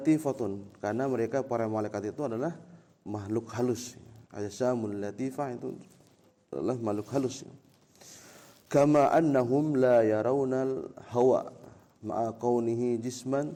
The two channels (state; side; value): identical; both; correlation 1.00